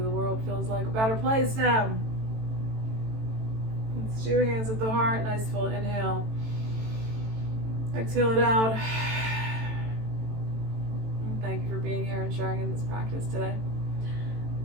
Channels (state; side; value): late; left; 18 ms